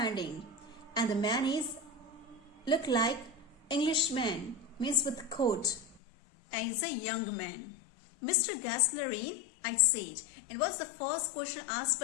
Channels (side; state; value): right; drops out; at 6.0 s